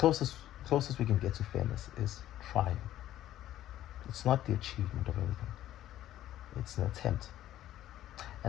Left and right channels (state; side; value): quieter; right; 13.1 dB